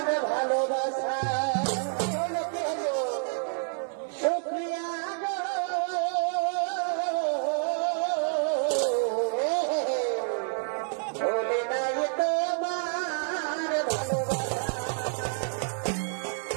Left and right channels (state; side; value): silent; left; 59 dB below the other